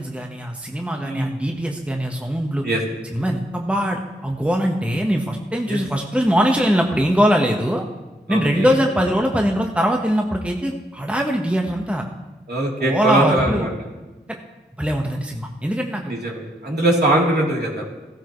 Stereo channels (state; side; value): normal; both; correlation 0.77